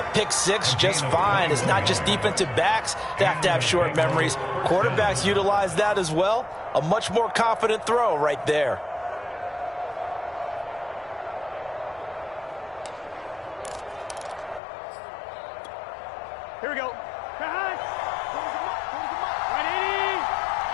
pick six just fine. It's not just defensive backs that have short memories. Quarterbacks utilize that as well. A much more confident throw right there. Here we go.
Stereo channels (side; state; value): right; drops out; at 14.6 s